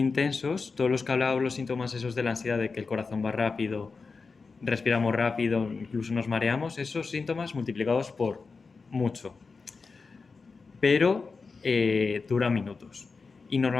todos los que hablábamos, los síntomas esos de la ansiedad, de que el corazón va rápido, respiramos rápido, incluso nos mareamos, esos síntomas multiplicados por mucho. Pero duran minutos. Y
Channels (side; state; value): right; quieter; 4.5 dB